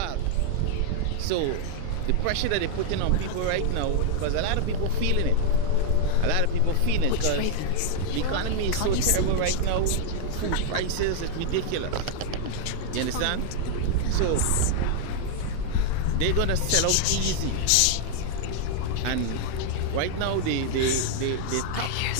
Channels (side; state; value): both; different; correlation 0.00